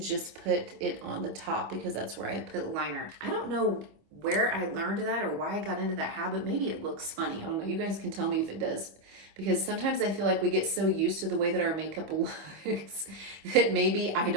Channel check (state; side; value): late; left; 25 ms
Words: put it on the top because that's where I put liner. I don't know where I learned that or why I got into that habit. Maybe it looks funny. I don't know. You guys can tell me if it does. Because sometimes I feel like we get so used to the way that our makeup looks that maybe I